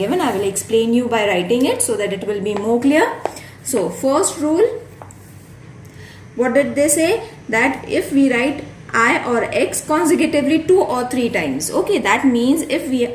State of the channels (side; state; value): both; identical; correlation 1.00